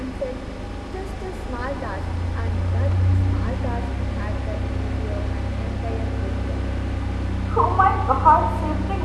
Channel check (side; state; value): both; identical; correlation 1.00